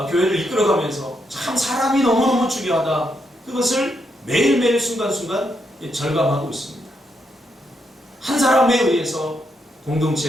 교회를 이끌어가면서 참 사람이 너무너무 중요하다. 그것을 매일매일 순간순간 절감하고 있습니다. 한 사람에 의해서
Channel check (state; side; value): normal; both; correlation 0.80